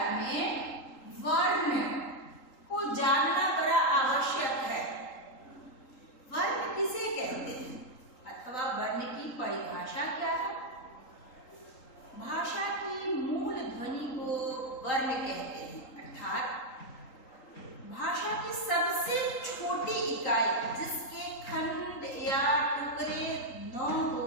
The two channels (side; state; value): right; late; 3.8 ms